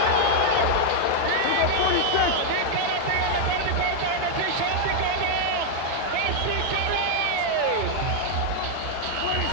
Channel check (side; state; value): both; different; correlation 0.00